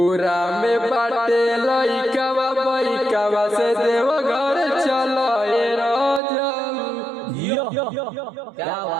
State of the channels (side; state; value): left; drops out; at 6.2 s